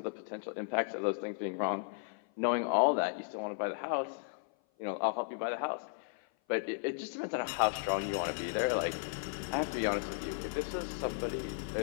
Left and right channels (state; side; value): silent; right; 54 dB below the other